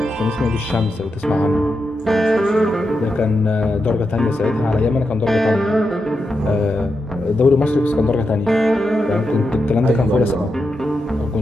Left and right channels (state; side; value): normal; both; correlation 0.86